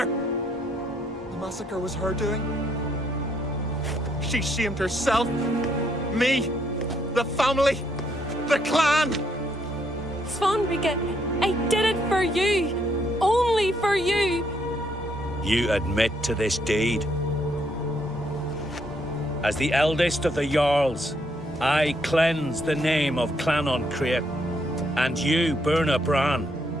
The massacre was her doing. She shamed herself, me, the family, the clan. Svanrika, I did it for you. Only for you. You admit to this deed. As the eldest of the Jarls, I cleanse the name of Clan Uncrate, and you, Berna Bran,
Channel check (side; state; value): both; normal; correlation 0.72